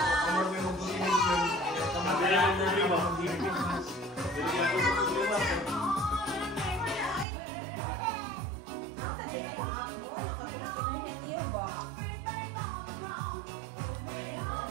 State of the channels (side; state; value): left; drops out; at 7.2 s